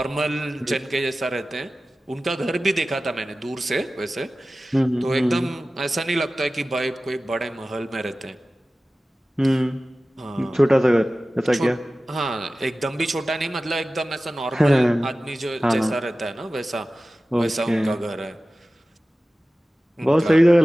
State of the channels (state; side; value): normal; both; correlation 0.96